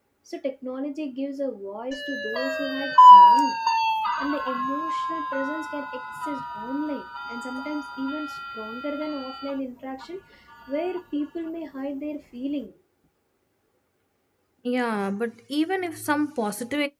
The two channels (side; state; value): both; identical; correlation 1.00